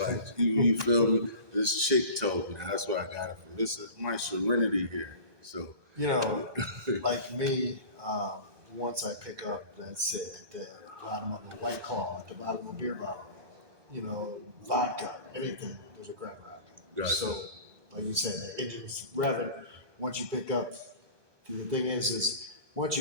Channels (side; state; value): left; late; 1.2 ms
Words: you feel me? This chick told me. That's where I got it from. This is my serenity here. So like me, once I pick up, that's it, at the bottom of a White Claw, at the bottom of a beer bottle, vodka, anything, there's a crack rock. Gotcha. So, like you said, the engine's revving. Once you pick up, the thing is once